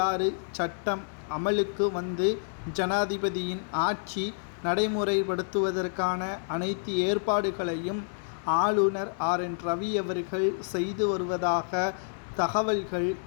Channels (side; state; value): right; silent; digital silence